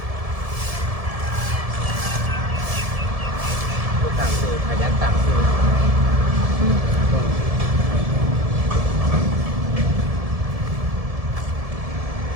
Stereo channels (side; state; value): left; late; 1.7 ms